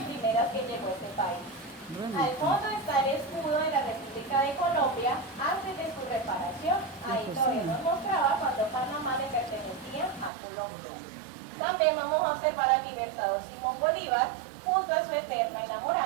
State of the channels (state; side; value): drops out; left; at 10.3 s